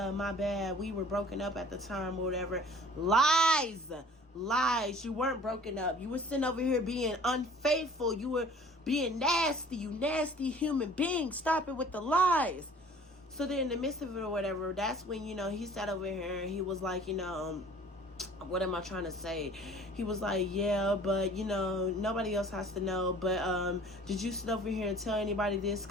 my bad, we were broken up at the time or whatever. Lies. You weren't broken up. You were sitting over here being unfaithful. You were being nasty. You nasty human being. Stop it with the lies. So then in the midst of it or whatever, that's when, you know, he sat over here and he was like, you know, what am I trying to say? He was like, yeah, but, you know, nobody else has to know. But did you sit over here and tell anybody this?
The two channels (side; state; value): both; normal; correlation 0.49